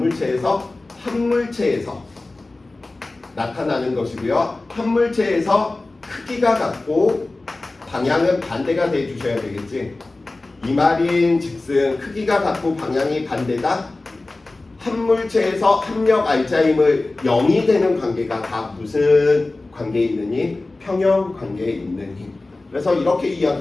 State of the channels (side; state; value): right; quieter; 3.1 dB